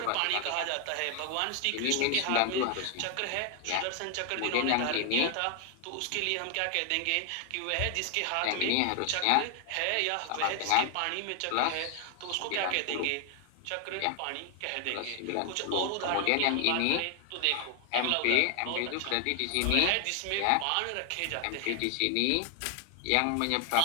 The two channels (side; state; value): both; different; correlation 0.00